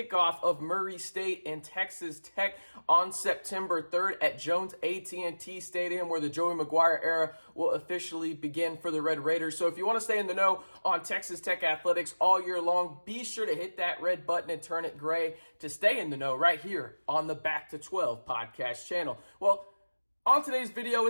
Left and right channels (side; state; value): both; inverted; correlation -1.00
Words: of Murray State and Texas Tech on September 3rd at Jones AT&T Stadium, where the Joey McGuire era will officially begin for the Red Raiders. So if you want to stay in the know on Texas Tech athletics all year long, be sure to hit that red button and turn it gray to stay in the know right here on the Back to 12 podcast channel. Well, on today's video,